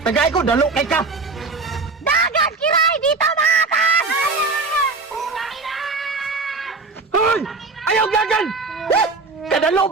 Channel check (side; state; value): left; quieter; 3.9 dB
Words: Tagaay ko, dalo kay ka! Dagat, Kiray! Dito makatan! Hoy! Ayaw gagan! Kadalo